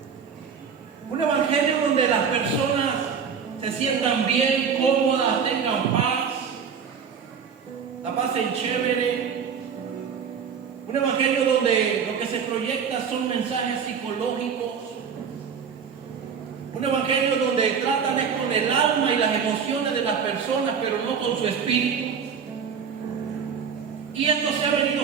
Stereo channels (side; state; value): left; quieter; 6.7 dB